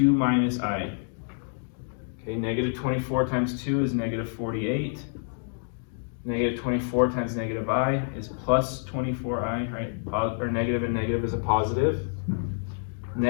minus I. Okay, negative 24 times 2 is negative 48. Negative 24 times negative I is plus 24i, right? Or negative and negative is a positive.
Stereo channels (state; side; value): silent; right; digital silence